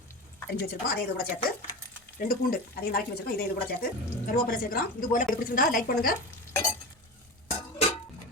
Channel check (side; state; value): both; normal; correlation 0.26